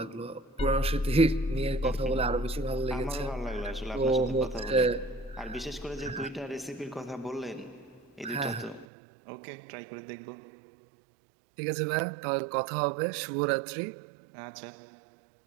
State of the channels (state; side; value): drops out; left; at 8.8 s